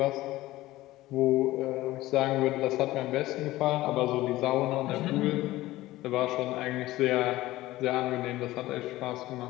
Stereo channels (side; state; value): right; quieter; 17.0 dB